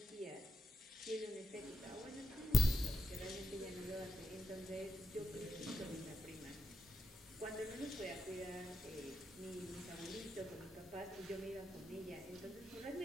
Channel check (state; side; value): normal; both; correlation 0.85